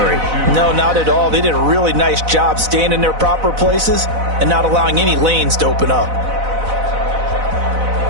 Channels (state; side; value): late; left; 4.0 ms